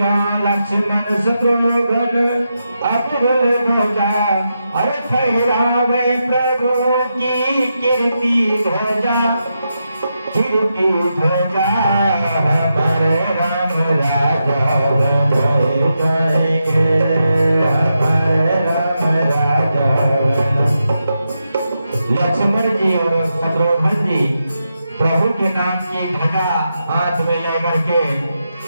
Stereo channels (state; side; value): inverted; both; correlation -0.86